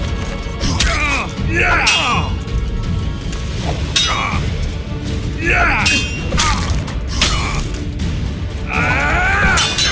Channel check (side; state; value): both; identical; correlation 1.00